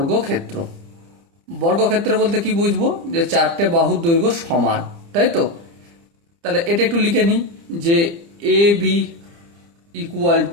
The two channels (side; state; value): left; late; 30 ms